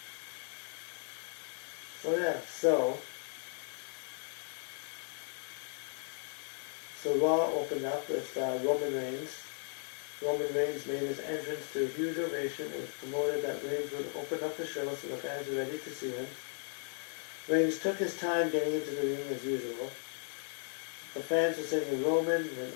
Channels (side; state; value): right; silent; 54 dB below the other